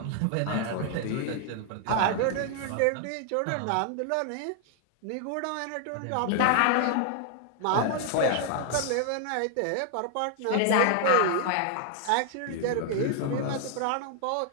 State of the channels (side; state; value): both; different; correlation 0.00